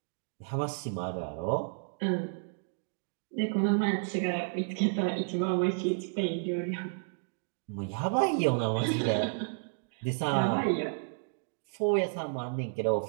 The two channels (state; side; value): silent; left; digital silence